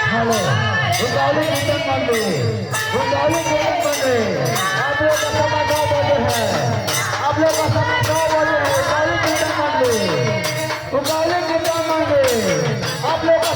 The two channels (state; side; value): identical; both; correlation 1.00